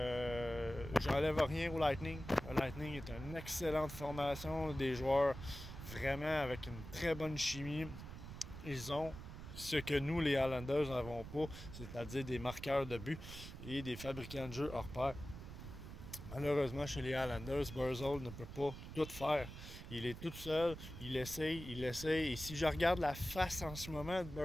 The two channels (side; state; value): right; noise; rumble, 11 dB below the sound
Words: J'enlève rien au Lightning. Le Lightning est une excellente formation, des joueurs vraiment avec une très bonne chimie. Ils ont ce que nous, les Islanders, n'avons pas, c'est-à-dire des marqueurs de but et des fabricants de jeux hors pair. Malheureusement, chez les Islanders, Barzal ne peut pas tout faire. Il est tout seul, il essaye. Et si je regarde la face en ce moment de